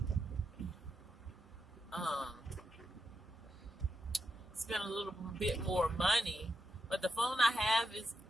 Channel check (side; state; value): both; normal; correlation 0.85